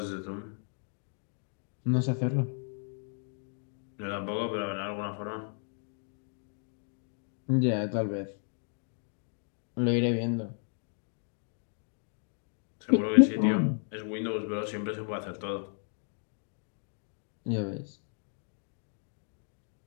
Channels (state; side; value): silent; right; 55 dB below the other